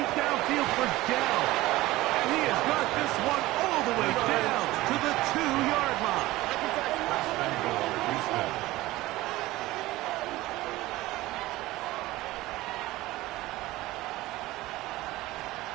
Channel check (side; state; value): left; quieter; 18.1 dB